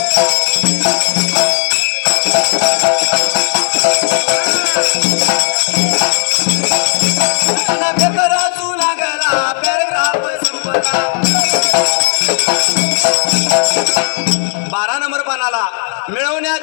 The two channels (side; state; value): right; silent; 65 dB below the other